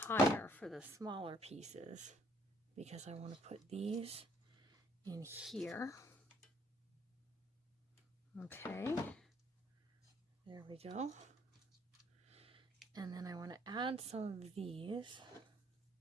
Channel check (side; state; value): both; normal; correlation 0.64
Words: for the smaller pieces because I want to put these in here. Okay, there we go. And then I want to add some of these.